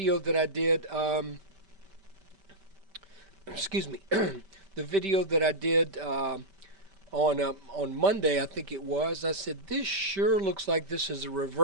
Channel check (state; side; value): late; left; 5.1 ms